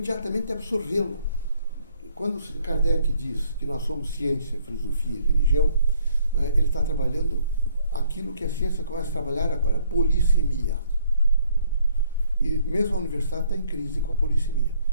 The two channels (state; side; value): inverted; both; correlation -0.65